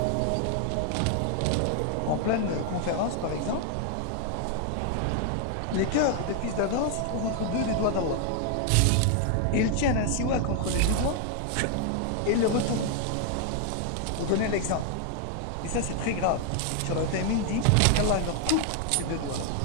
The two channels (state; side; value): different; both; correlation 0.00